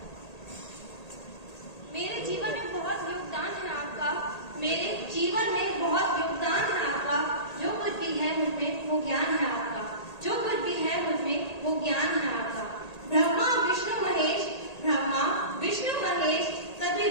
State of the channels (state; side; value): late; right; 1.8 ms